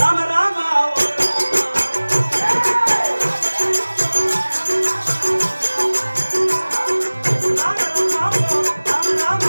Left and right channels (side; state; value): both; inverted; correlation -1.00